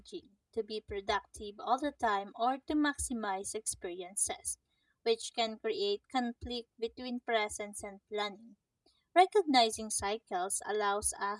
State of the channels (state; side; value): identical; both; correlation 1.00